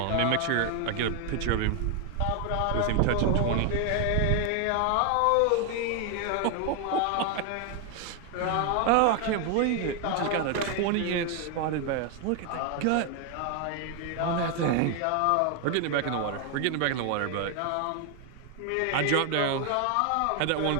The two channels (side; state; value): both; different; correlation 0.00